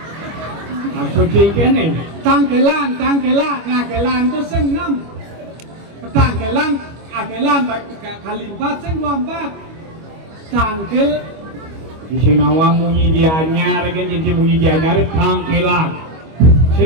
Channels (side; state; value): left; late; 25 ms